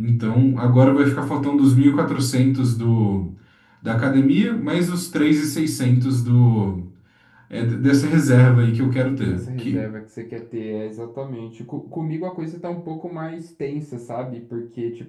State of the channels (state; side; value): identical; both; correlation 1.00